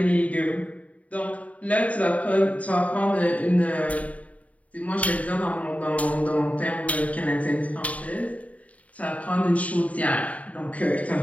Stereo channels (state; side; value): late; right; 0.069 ms